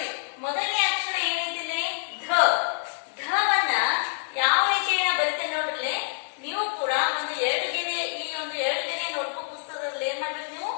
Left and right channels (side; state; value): right; silent; 61 dB below the other